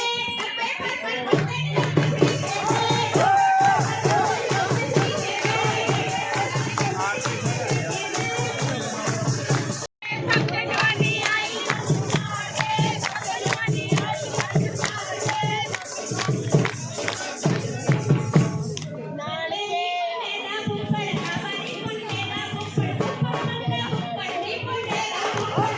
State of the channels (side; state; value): both; identical; correlation 1.00